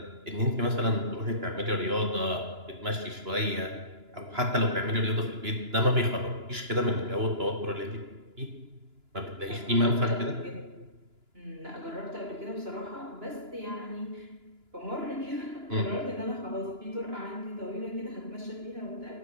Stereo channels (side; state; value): left; late; 2.9 ms